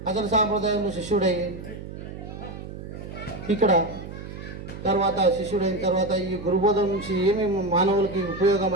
అసలు సాంప్రదాయంలో శిష్యుడయ్యి ఇక్కడ తర్వాత శిష్యుడైన తర్వాత ఈ గురుబోధ నుంచి ఏమేమి మానవులకి ఉపయోగం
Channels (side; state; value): right; noise; hum, 11 dB below the sound